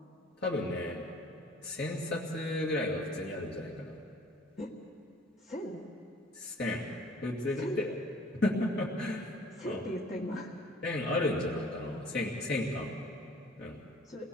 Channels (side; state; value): both; normal; correlation 0.52